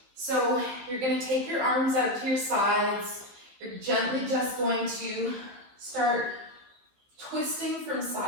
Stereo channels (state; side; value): late; left; 15 ms